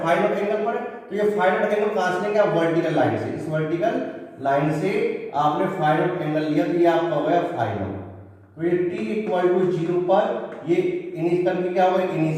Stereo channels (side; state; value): both; identical; correlation 1.00